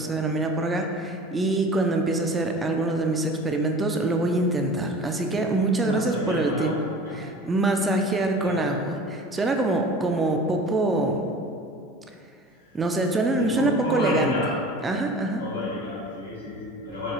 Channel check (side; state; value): both; normal; correlation 0.41